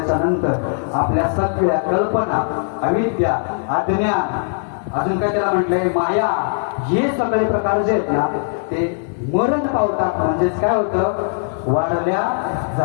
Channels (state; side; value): silent; right; digital silence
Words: नंतर आपल्या सगळ्या कल्पना, अविद्या, अज्ञान, अजून काय त्याला म्हटलंय माया, हे सगळे प्रकार जे आहेत ना ते मरण पावतात. म्हणजेच काय होतं, वारल्या